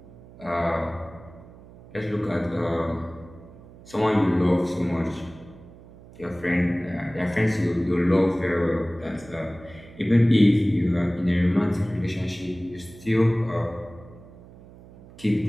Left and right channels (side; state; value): right; noise; hum, 21 dB below the sound